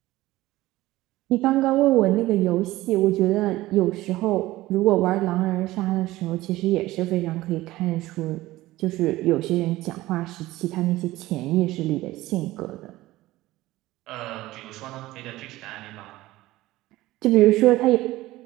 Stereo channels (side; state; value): left; quieter; 17.4 dB